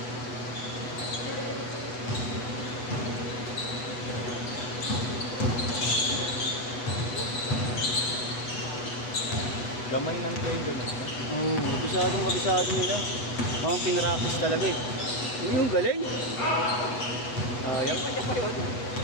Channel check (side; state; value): right; late; 8.1 ms